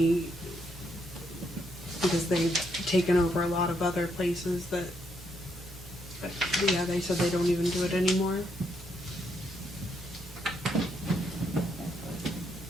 because they've taken over a lot of other places that, but yeah, they said they don't even do it anymore.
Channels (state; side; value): normal; both; correlation 0.76